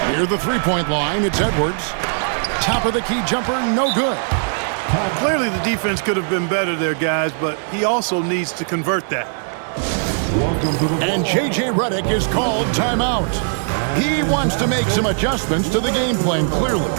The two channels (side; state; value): left; silent; 66 dB below the other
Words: Near the three-point line, it's Edwards. Top of the key jumper, no good. Clearly the defense could have been better there, guys, but he also needs to convert that. And J.J. Redick is called timeout. He wants to make some adjustments to the game plan, clearly.